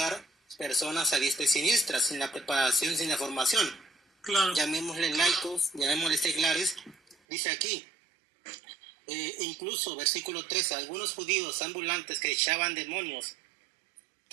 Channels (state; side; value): drops out; left; at 7.2 s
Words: personas a diestra y siniestra, sin la preparación, sin la formación. Claro. Llamémosle laicos, llamémosle seglares. Dice aquí, incluso versículo 13, algunos judíos ambulantes que echaban demonios